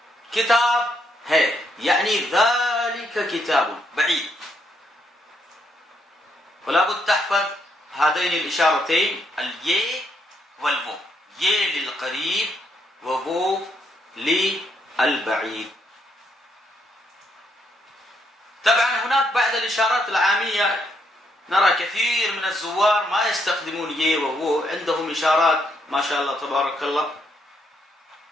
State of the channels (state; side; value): normal; both; correlation 0.75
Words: كتاب है يعني ذلك كتاب بعيد. ولا بد تحفظ هذين الإشارتين، الي والفو، ي للقريب وفو للبعيد. طبعا هناك بعض الإشارات العامية نرى كثير من الزوار ما يستخدمون ي وفو، عندهم إشارات ما شاء الله تبارك الله.